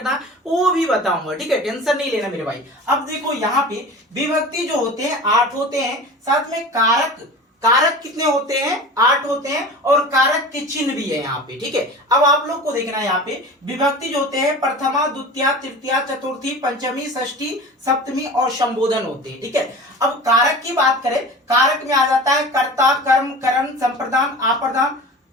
वो भी बताऊंगा, ठीक है, टेंशन नहीं लेना मेरे भाई। अब देखो यहाँ पे विभक्ति जो होते हैं 8 होते हैं, साथ में कारक कितने होते हैं, 8 होते हैं, और कारक के चिन्ह भी है यहाँ पे, ठीक है। अब आप लोग को देखना है यहाँ पे विभक्ति जो होते हैं प्रथमा, द्वितीया, तृतीया, चतुर्थी, पंचमी, षष्ठी, सप्तमी और संबोधन होते हैं, ठीक है। अब कारक की बात करें, कारक में आ जाता है कर्ता, कर्म, करण, संप्रदान, आप्रदान,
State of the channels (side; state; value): both; normal; correlation 0.35